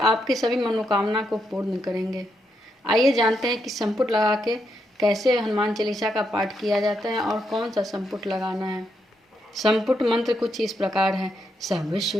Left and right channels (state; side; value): normal; both; correlation 0.80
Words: सभी मनोकामना को पूर्ण करेंगे। आइए जानते हैं कि संपुट लगा के कैसे हनुमान चालीसा का पाठ किया जाता है और कौन सा संपुट लगाना है। संपुट मंत्र कुछ इस प्रकार है। सब